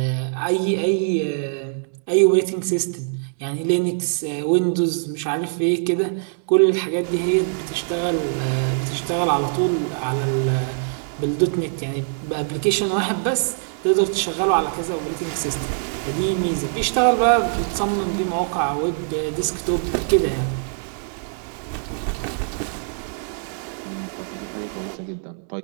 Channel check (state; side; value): silent; left; digital silence